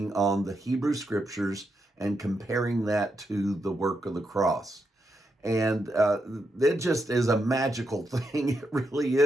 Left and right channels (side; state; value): both; normal; correlation 0.83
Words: on the Hebrew scriptures and comparing that to the work of the cross. And it just is a magical thing. It really